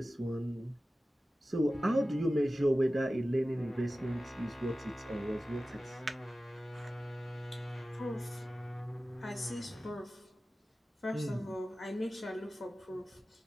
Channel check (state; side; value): normal; both; correlation 0.95